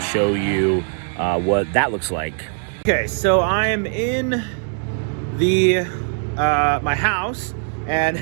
show you what that looks like. Okay, so I am in the my house, and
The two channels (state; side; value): silent; left; 58 dB below the other